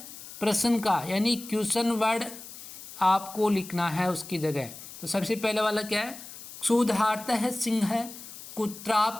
प्रश्न का, यानी क्वेश्चन वर्ड आपको लिखना है उसकी जगह। तो सबसे पहले वाला क्या है, क्षुधार्तः सिंह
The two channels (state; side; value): noise; left; hiss, 14 dB below the sound